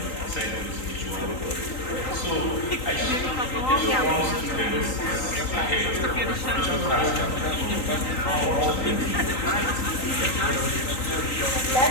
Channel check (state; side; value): late; right; 3.9 ms